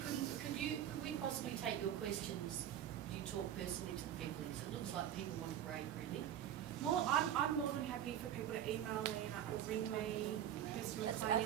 we possibly take your questions? Do you talk personally to the people? Because it looks like people want a break, really. Well, I'm more than happy for people to email me or ring me. Kirsten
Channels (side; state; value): left; quieter; 10.6 dB